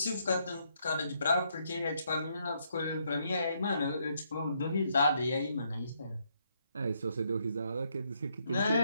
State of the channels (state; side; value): inverted; both; correlation -0.74